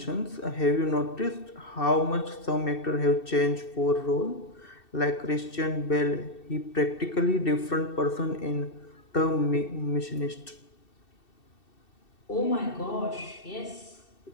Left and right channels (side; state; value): right; late; 2.7 ms